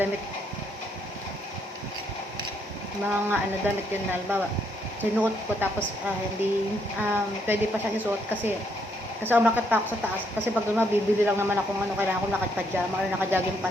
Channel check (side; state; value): both; normal; correlation 0.73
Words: Mga damit yun na halimbawa. Sinuot ko tapos pwede pa siyang isuot kasi umakyat pa ako sa taas. Kasi pag bibili lang naman ako kailangan ko naka-pajama or naka-jogging